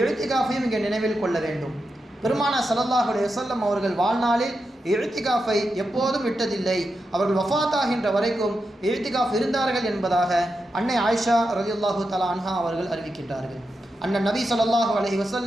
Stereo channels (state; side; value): normal; both; correlation 0.88